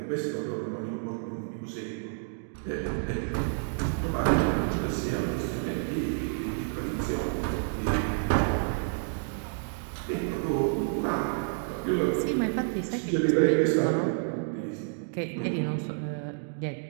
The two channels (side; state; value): left; silent; digital silence